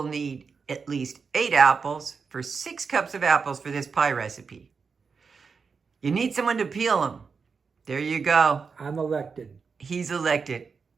need at least 8 apples for 6 cups of apples for this pie recipe. You need someone to peel them. There you go. I'm elected. He's elected.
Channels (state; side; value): quieter; left; 5.3 dB